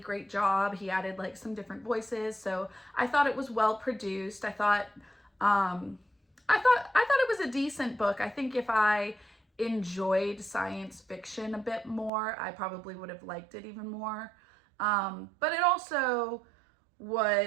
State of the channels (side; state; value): left; drops out; at 12.1 s